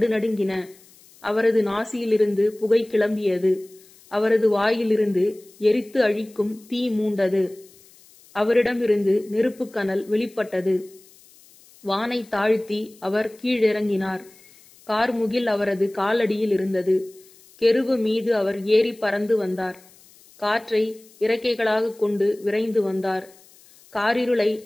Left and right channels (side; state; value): left; noise; hiss, 26 dB below the sound